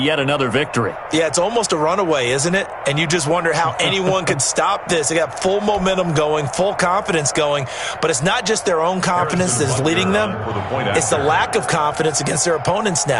another victory. Yeah, it's almost a runaway, isn't it? And you just wonder how anyone could stop this. They got full momentum going, full confidence going. But it's not just their own confidence that's leading them. It's the lack of confidence against their opponents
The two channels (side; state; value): both; identical; correlation 1.00